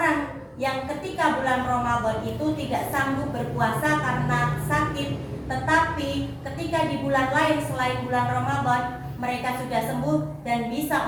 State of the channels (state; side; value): identical; both; correlation 1.00